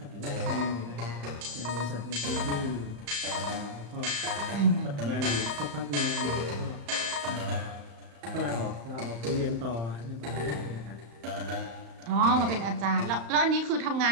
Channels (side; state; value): left; late; 35 ms